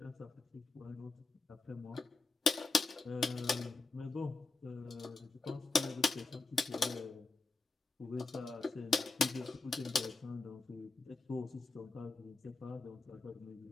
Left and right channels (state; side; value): quieter; right; 3.7 dB